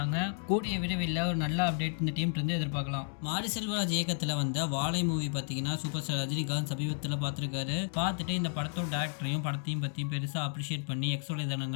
கூடிய விரைவில் ஒரு நல்ல அப்டேட் இந்த டீம் இருந்து எதிர்பார்க்கலாம். மாரி செல்வராஜ் இயக்கத்தில் வந்த வாழை மூவி பார்த்தீங்கன்னா சூப்பர் ஸ்டார் ரஜினிகாந்த் சமீபத்தில் பார்த்துருக்காரு. பார்த்துட்டு இந்த படத்தோட டேரக்டரையும் படத்தையும் பற்றி பெருசாக அப்ரிஷியேட் பண்ணி எக்ஸோலை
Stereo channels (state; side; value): silent; right; 56 dB below the other